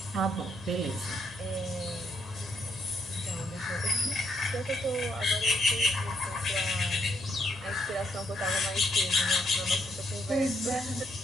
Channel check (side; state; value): both; normal; correlation 0.74